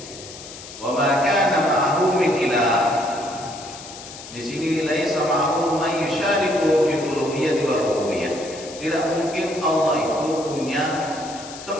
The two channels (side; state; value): left; noise; hiss, 14 dB below the sound